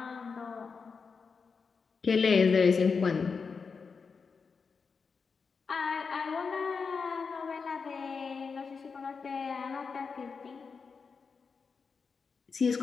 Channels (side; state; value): right; quieter; 5.2 dB